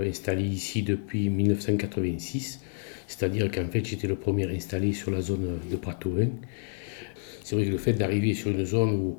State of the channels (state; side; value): silent; right; 59 dB below the other